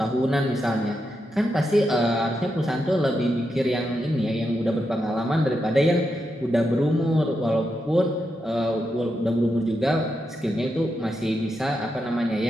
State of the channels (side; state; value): both; normal; correlation 0.85